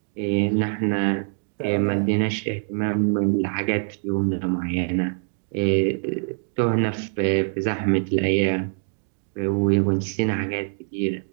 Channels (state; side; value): silent; left; digital silence